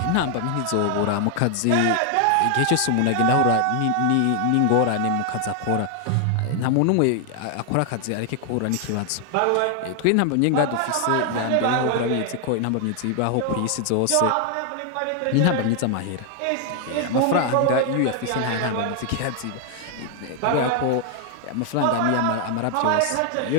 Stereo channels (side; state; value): both; different; correlation 0.00